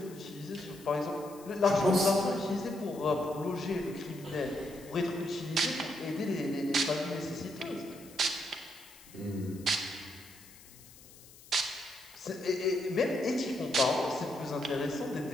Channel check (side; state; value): left; noise; hiss, 21 dB below the sound